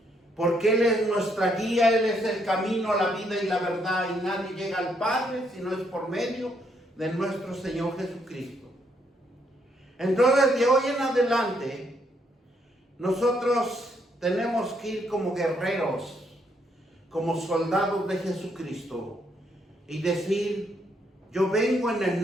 Porque Él es nuestra guía, Él es el camino, la vida y la verdad, y nadie llega al Padre si no es por medio de nuestro Señor Jesucristo. Entonces, de hoy en adelante, nosotros tenemos que ir como guerreros, como soldados de Jesucristo, y decir, yo vengo en el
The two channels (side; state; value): both; normal; correlation 0.73